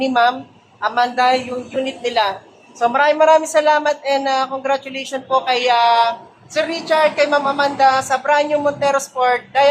Ma'am Amanda yung unit nila. So, maraming salamat and congratulations po kay Sir Richard, kay Ma'am Amanda sa brand new Montero Sport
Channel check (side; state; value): both; identical; correlation 1.00